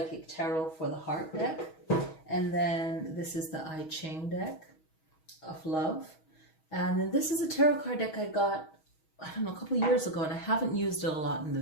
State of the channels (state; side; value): late; right; 6.3 ms